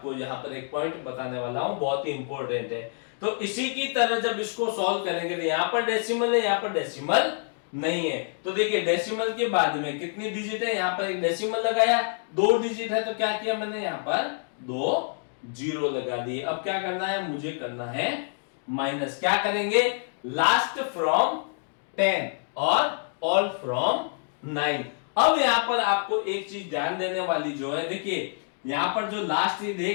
यहाँ पर एक पॉइंट बताने वाला हूं, बहुत ही इंपॉर्टेंट है। तो इसी की तरह जब इसको सॉल्व करेंगे तो यहाँ पर डेसिमल है, यहाँ पर डेसिमल नहीं है। तो देखिए डेसिमल के बाद में कितनी डिजिट है, यहाँ पर एक डेसिमल लगाया, 2 डिजिट है, तो क्या किया मैंने यहाँ पर 2 जीरो लगा दिए। अब क्या करना है, मुझे करना है माइनस। क्या करेंगे, लास्ट फ्रॉम 10 और ऑल फ्रॉम 9। अब यहां पर आपको एक चीज ध्यान देने वाली जो है, देखिए यहां पर जो लास्ट ये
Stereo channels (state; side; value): silent; right; 60 dB below the other